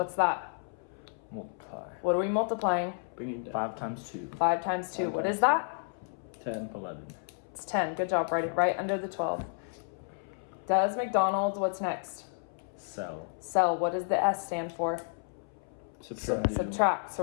that? Multiply. What are we multiplying? Bring it down. 5 times 2. 5 times 2. 5 What times is that? 10. 11. It's 10. Good job. Write it right under the 12. Does McDonald's, what's next? Sell. Sell. What does the S stand for? Subtract. Subtract.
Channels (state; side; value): silent; right; 57 dB below the other